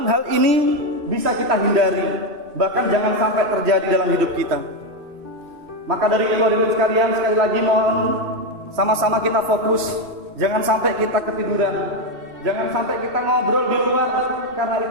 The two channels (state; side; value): late; left; 2.7 ms